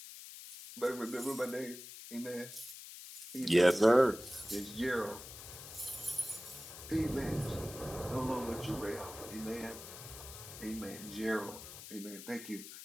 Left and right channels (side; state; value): left; noise; hiss, 13 dB below the sound